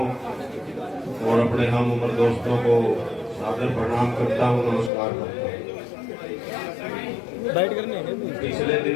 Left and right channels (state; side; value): drops out; right; at 4.9 s